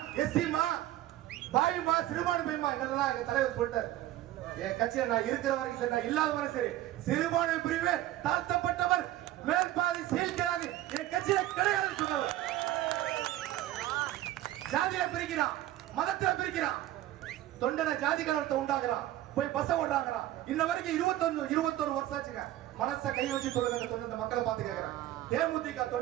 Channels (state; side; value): quieter; left; 14.4 dB